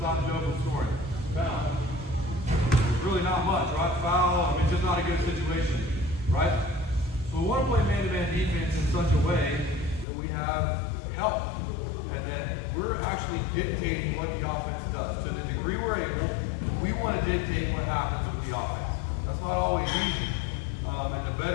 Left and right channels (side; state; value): right; drops out; at 10.1 s